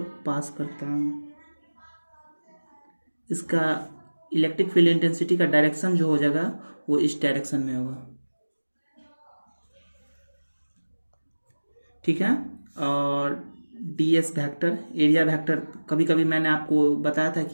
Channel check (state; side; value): inverted; both; correlation -1.00